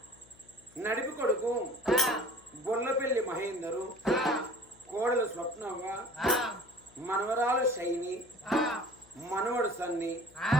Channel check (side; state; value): left; noise; hum, 26 dB below the sound